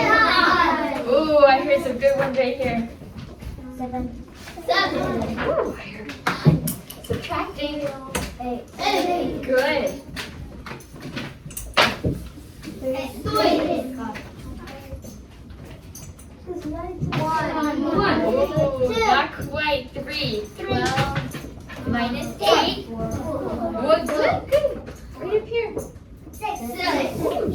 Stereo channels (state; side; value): identical; both; correlation 1.00